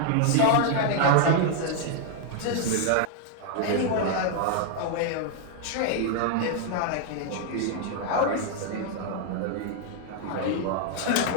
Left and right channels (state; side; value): different; both; correlation 0.00